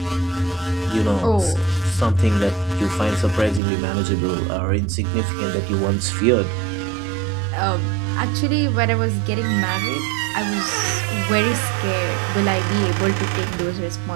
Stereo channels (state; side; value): drops out; left; at 3.6 s